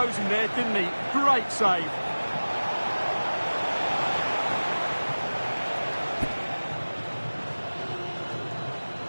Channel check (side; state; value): both; inverted; correlation -1.00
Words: there, didn't he? Great save.